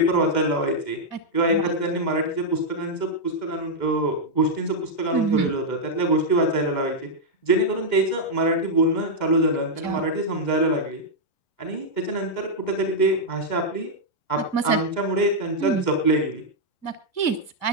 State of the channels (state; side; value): late; right; 2.0 ms